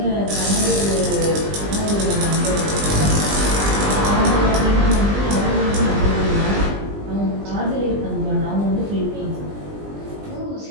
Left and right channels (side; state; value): left; late; 20 ms